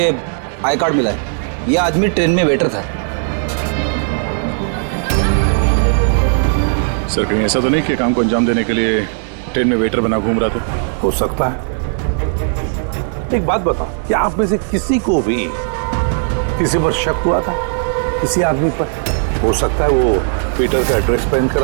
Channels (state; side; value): silent; left; digital silence